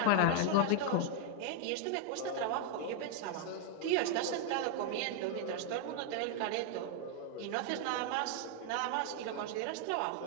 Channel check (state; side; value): different; both; correlation 0.00